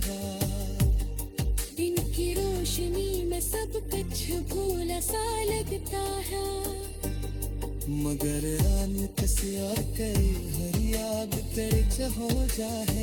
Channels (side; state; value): both; identical; correlation 1.00